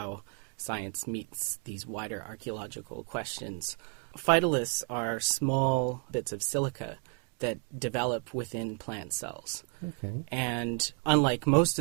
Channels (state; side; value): quieter; left; 35.6 dB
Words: science meets these wider archaeological questions. Phytoliths are small bits of silica that develop within plant cells. Okay. And unlike most